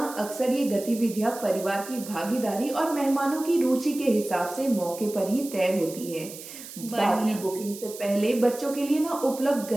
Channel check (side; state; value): right; noise; hiss, 13 dB below the sound